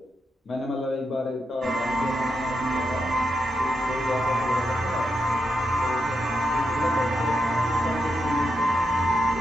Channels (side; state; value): both; normal; correlation 0.84